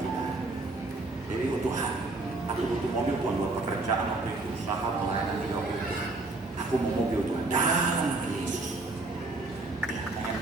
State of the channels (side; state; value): left; quieter; 3.1 dB